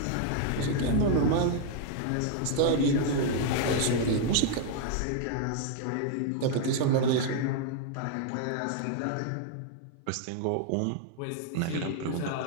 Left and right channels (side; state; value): both; different; correlation 0.00